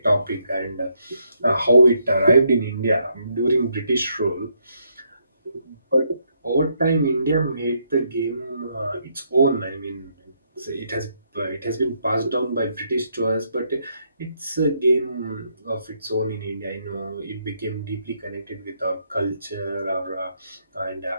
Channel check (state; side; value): inverted; both; correlation -0.75